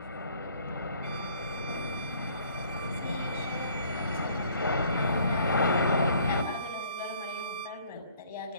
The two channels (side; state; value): both; inverted; correlation -0.58